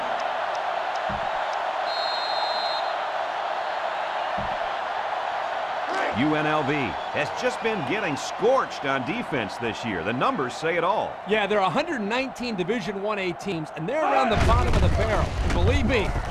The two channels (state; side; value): identical; both; correlation 1.00